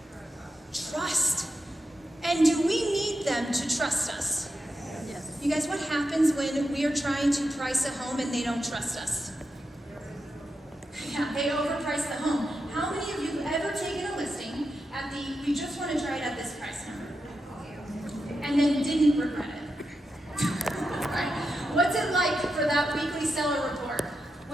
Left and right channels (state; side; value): normal; both; correlation 0.87